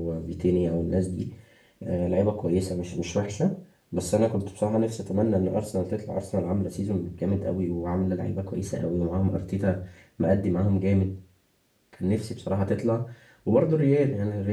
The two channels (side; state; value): both; identical; correlation 1.00